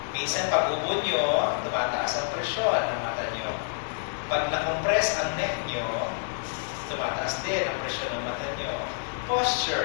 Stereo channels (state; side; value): silent; right; 59 dB below the other